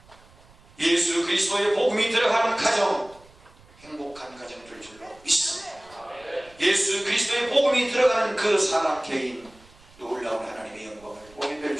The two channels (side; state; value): right; noise; rumble, 26 dB below the sound